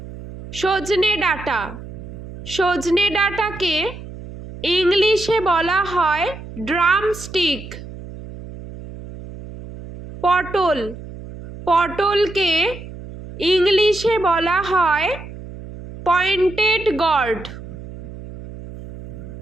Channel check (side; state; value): right; noise; hum, 13 dB below the sound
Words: সজনে ডাঁটা, সজনে ডাঁটাকে ইংলিশে বলা হয় ড্রামস্টিক। পটল, পটলকে ইংলিশে বলা হয় পয়েন্টেড গর্ড।